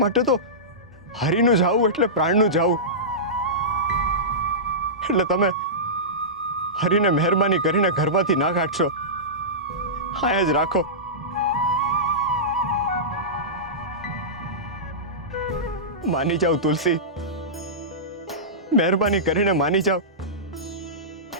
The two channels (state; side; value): normal; both; correlation -0.17